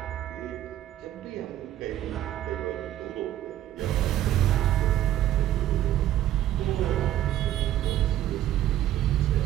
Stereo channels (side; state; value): left; quieter; 12.8 dB